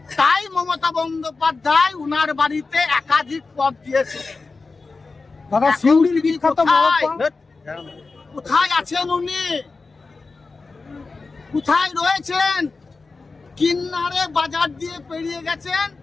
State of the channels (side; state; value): right; quieter; 4.0 dB